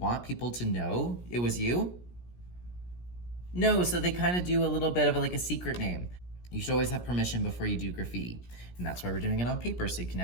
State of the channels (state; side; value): late; right; 17 ms